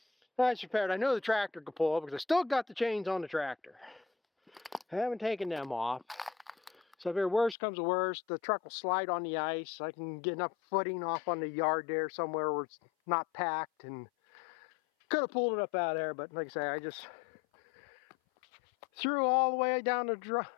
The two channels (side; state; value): right; drops out; at 7.6 s